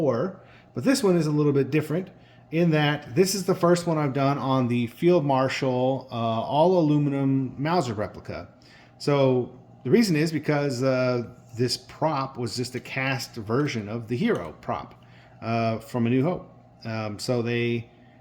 but this one is a little bit different in that this is the first one I've done on the Field Marshal all aluminum Mauser replica. So the reason is because this prop was just a cast version of the Hero prop from A New Hope. So they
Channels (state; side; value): identical; both; correlation 1.00